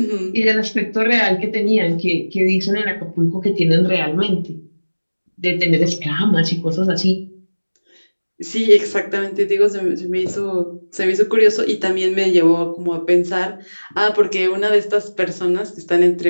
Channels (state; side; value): inverted; both; correlation -1.00